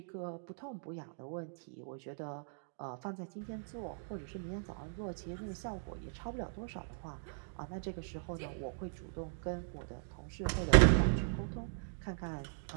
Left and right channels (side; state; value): left; silent; digital silence